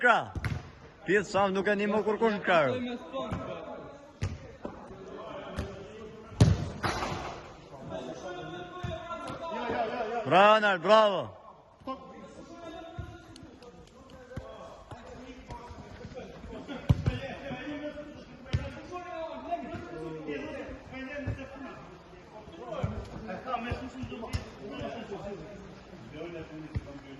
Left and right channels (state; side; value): identical; both; correlation 1.00